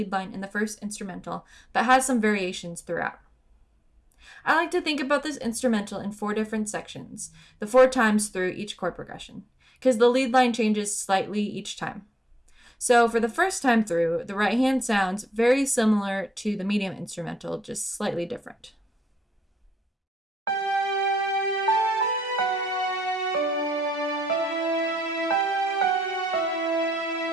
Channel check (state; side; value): normal; both; correlation 0.80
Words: line in the first instrumental, but has some variations throughout. I like to think about this instrumental in 4 different sections, the 4 times through each chord progression, because the lead line changes slightly each time. So for the first time through, the right hand sounds very similar to the medium instrumental, just slightly different.